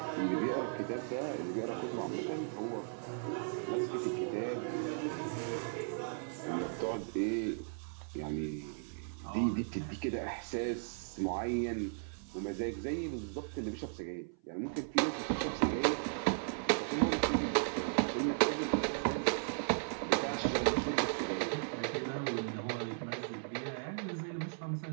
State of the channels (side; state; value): left; silent; 53 dB below the other